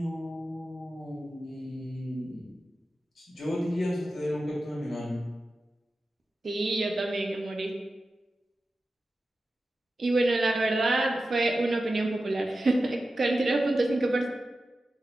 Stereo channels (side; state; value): both; normal; correlation 0.93